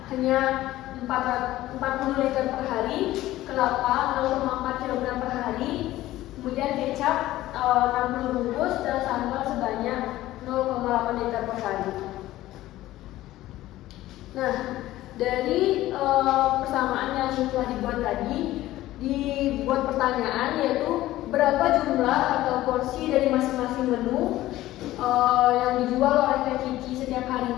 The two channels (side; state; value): right; quieter; 15.6 dB